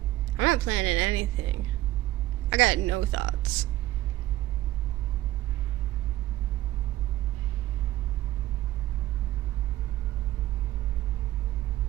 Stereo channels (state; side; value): quieter; left; 15.7 dB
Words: I'm not planning anything. I got no thoughts.